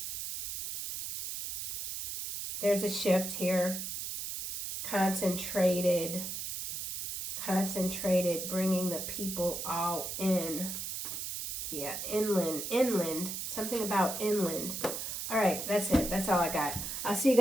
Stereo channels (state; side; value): noise; right; hiss, 5 dB below the sound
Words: There's a shift here. Concentrated, bringing the people all in. Yeah, inland, something about inland. All right, that's it. That's all I got. I'll see you